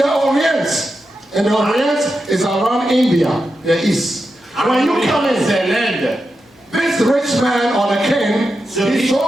Orient is around India, the east. When you come in, c'est l'Inde. this rich man or the king is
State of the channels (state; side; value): normal; both; correlation 0.89